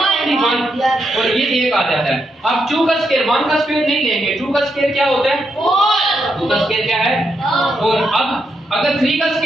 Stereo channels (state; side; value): normal; both; correlation 0.81